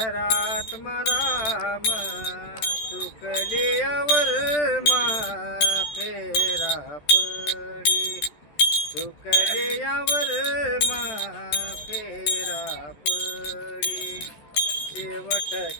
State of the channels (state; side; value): late; right; 13 ms